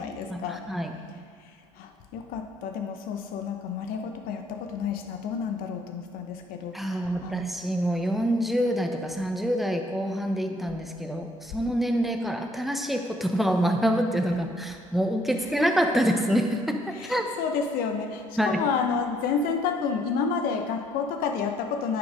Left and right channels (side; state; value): both; normal; correlation 0.67